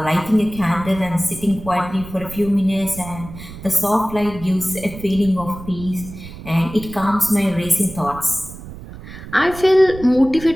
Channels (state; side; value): noise; right; rumble, 14 dB below the sound